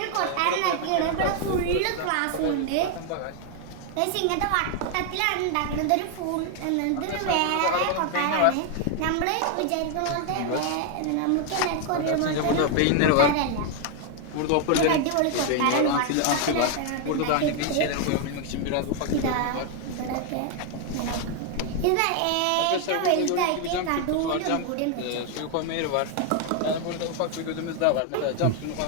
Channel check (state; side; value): different; both; correlation 0.00